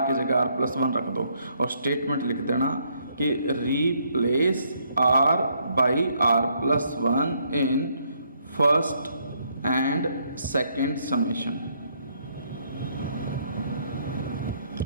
की जगह r प्लस वन रख दो और स्टेटमेंट लिख देना कि replace r by r plus one in first and second summation.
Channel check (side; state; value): both; inverted; correlation -0.71